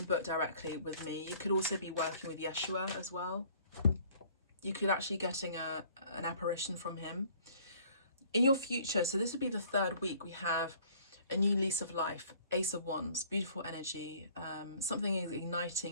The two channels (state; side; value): inverted; both; correlation -0.56